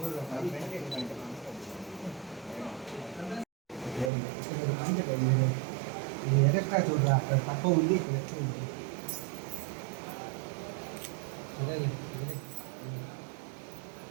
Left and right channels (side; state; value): left; drops out; at 4.1 s